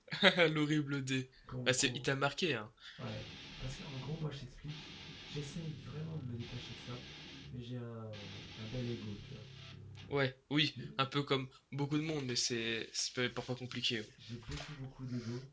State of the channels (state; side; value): identical; both; correlation 1.00